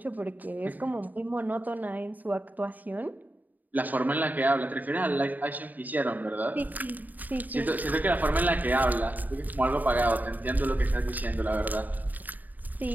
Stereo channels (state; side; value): late; left; 0.083 ms